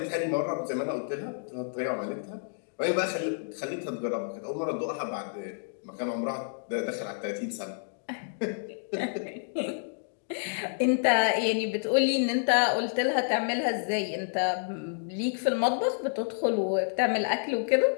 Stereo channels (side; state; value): right; silent; digital silence